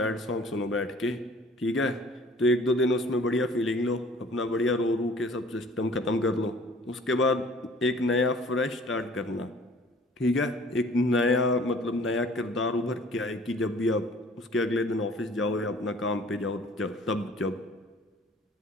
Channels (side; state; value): both; normal; correlation 0.52